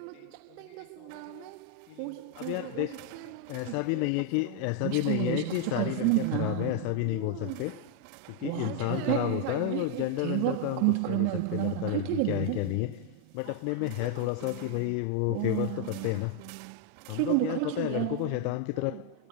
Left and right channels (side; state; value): both; different; correlation 0.00